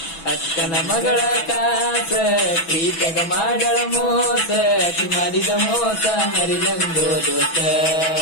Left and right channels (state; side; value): late; right; 6.1 ms